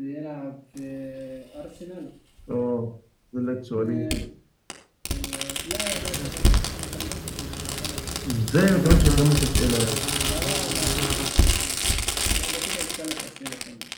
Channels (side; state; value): both; identical; correlation 1.00